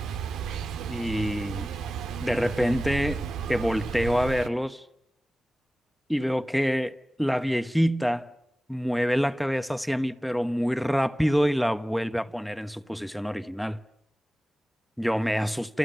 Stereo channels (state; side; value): normal; both; correlation 0.96